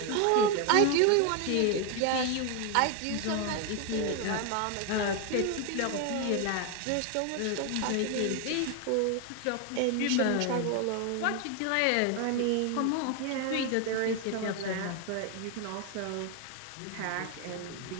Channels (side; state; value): both; different; correlation 0.01